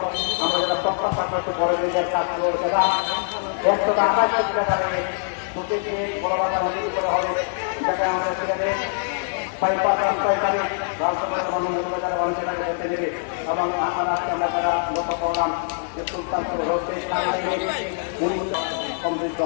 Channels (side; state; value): right; silent; digital silence